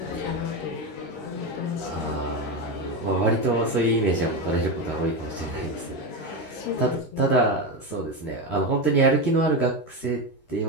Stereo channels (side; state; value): right; late; 13 ms